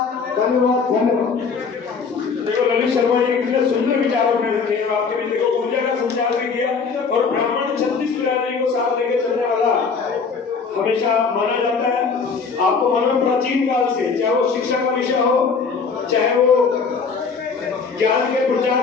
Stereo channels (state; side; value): quieter; right; 5.3 dB